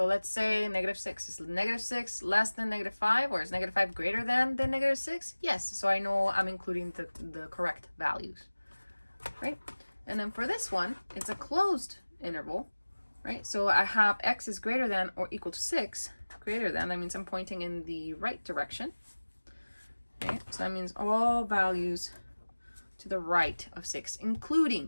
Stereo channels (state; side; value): inverted; both; correlation -1.00